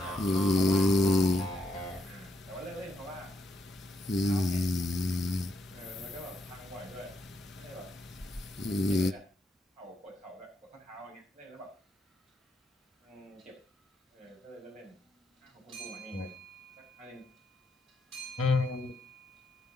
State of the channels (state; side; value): normal; both; correlation 0.78